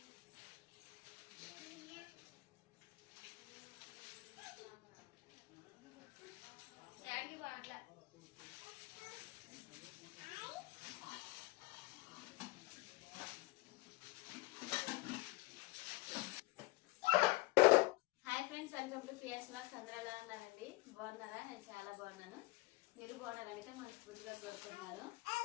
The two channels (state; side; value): quieter; right; 21.0 dB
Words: welcome to Priya's vlogs. అందరూ ఎలా ఉన్నారండి? బాగున్నారా? నేను చాలా బాగున్నాను. మీరు బాగున్నారైతే మనస్ఫూర్తిగా కోరుకుంటున్నాను.